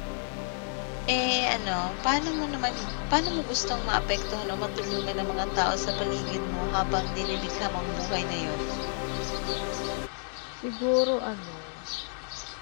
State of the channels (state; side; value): silent; right; 56 dB below the other